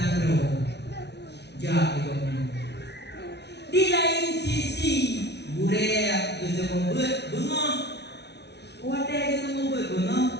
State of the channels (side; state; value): right; late; 0.50 ms